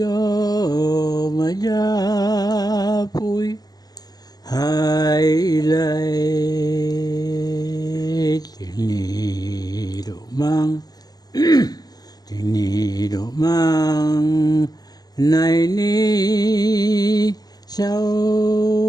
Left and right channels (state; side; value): late; right; 0.19 ms